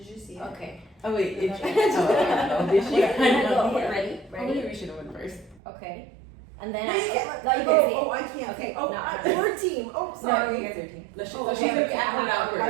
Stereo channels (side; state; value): left; drops out; at 5.6 s